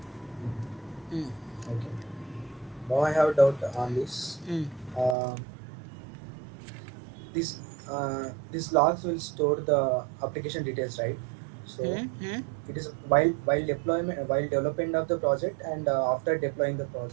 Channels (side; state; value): left; drops out; at 5.2 s